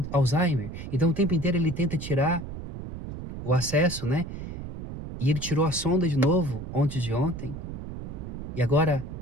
Alzheimer. Então o tempo inteiro ele tenta tirar o acesso, né? E ele tirou a sonda de novo antes de ontem. E agora,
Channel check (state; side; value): noise; right; rumble, 9 dB below the sound